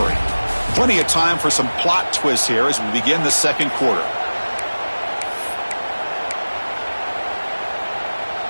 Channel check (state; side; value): inverted; both; correlation -1.00